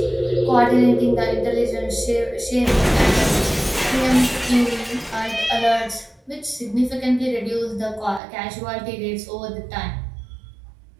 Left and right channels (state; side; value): drops out; left; at 8.2 s